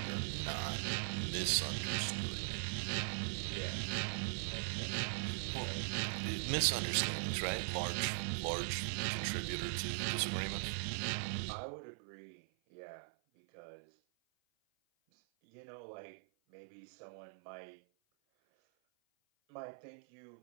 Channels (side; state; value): left; silent; 51 dB below the other